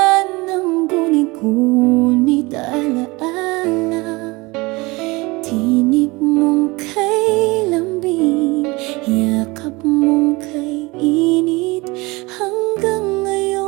ng guni-gunit alaala. Tinig mong kay lambing, yakap mong kay init. Hanggang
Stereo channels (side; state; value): left; quieter; 23.6 dB